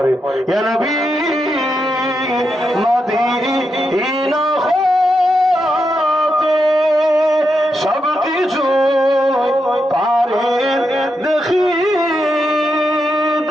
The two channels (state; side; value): normal; both; correlation 0.84